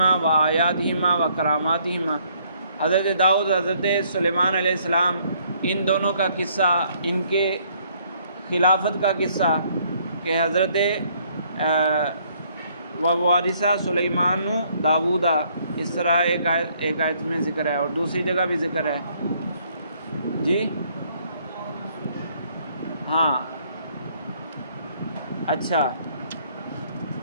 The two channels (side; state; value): both; inverted; correlation -0.66